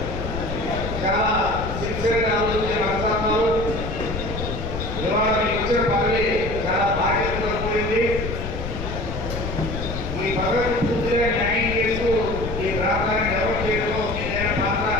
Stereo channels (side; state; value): left; noise; rumble, 5 dB below the sound